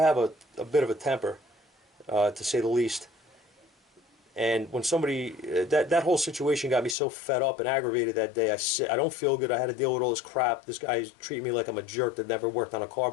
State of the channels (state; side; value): drops out; right; at 7.0 s